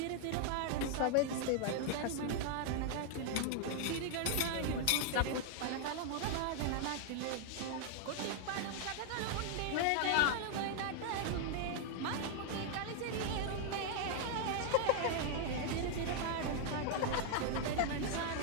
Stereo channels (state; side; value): different; both; correlation 0.00